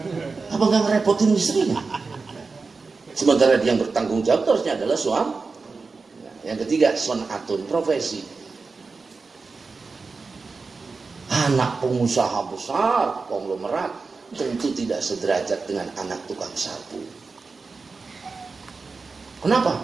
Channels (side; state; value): left; quieter; 4.3 dB